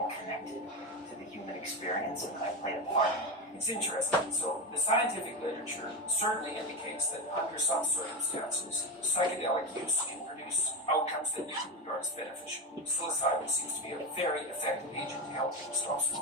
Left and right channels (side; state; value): both; normal; correlation 0.16